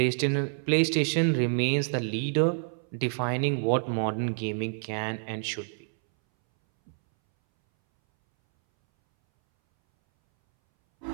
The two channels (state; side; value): silent; left; 60 dB below the other